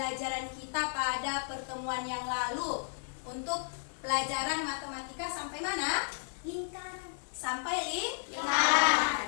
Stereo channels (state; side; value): silent; right; 56 dB below the other